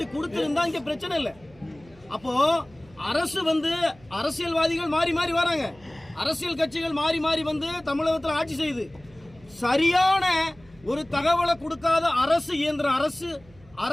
கொடுத்துருந்தா இங்க பிரச்சனை இல்லை. அப்போ அரசு வந்து அரசியல்வாதிகள் மாறி மாறி வராங்க, அரசியல் கட்சிகள் மாறி மாறி வந்து தமிழகத்தில் ஆட்சி செய்யுது. சரியான ஒரு தகவலை கொடுக்காத அரசு இயந்திரம்,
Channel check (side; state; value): right; noise; hum, 26 dB below the sound